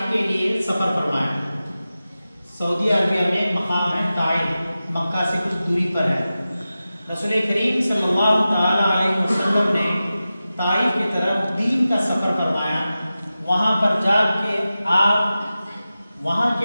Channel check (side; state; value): both; inverted; correlation -0.94